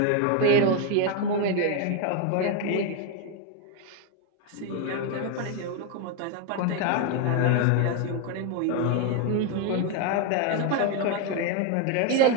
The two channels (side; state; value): both; different; correlation 0.01